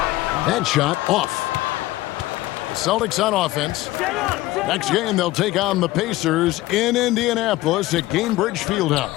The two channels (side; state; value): right; quieter; 17.6 dB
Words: That shot off. The Celtics on offense. Next game, they'll take on the Pacers in Indianapolis at Gainbridge